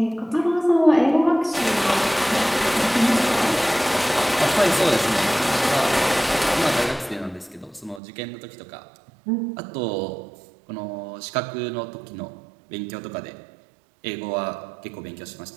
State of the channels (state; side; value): drops out; left; at 8.0 s